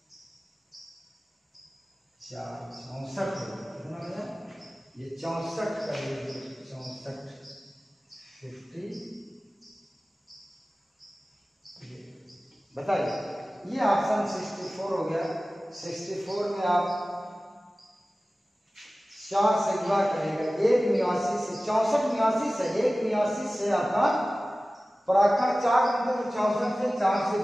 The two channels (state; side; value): normal; both; correlation 0.97